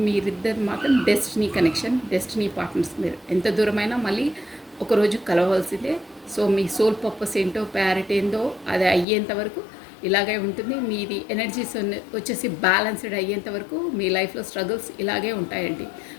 మీరిద్దరు మాత్రం డెస్టినీ కనెక్షన్, డెస్టినీ పార్ట్నర్స్. మీరు ఎంత దూరమైనా మళ్ళీ ఒకరోజు కలవవలసిందే. సో మీ సోల్ పర్పస్ ఏంటో, ప్యారెట్ ఏందో అది అయ్యేంత వరకు ఇలాగే ఉంటుంది. మీది ఎనర్జీస్ వచ్చేసి బ్యాలెన్స్డ్ అయ్యేంత వరకు మీ లైఫ్లో స్ట్రగుల్స్ ఇలాగే ఉంటాయండి.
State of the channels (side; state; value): right; drops out; at 9.1 s